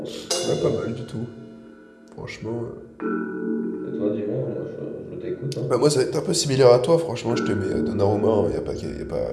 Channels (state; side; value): identical; both; correlation 1.00